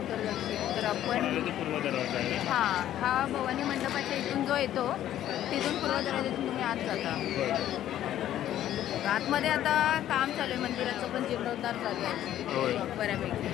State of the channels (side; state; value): right; quieter; 12.1 dB